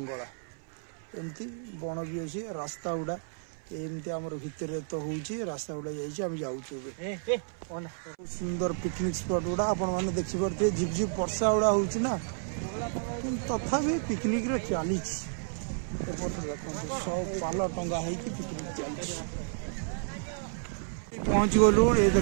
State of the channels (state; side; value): silent; left; 57 dB below the other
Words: एमती बण भी अछि रास्ता उडा एमती हमर भितर तो होउची रास्ता उडा जाइची हम जाउछु सुंदर पिकनिक स्पॉट उडा आपण माने देखि परते झिप झिप वर्षा उडा होउची ना तथापि पिकनिक रे चालीच एपटर देखो सब पाला टंगा है कि पिकनिक चालीच पहुंच गलु ये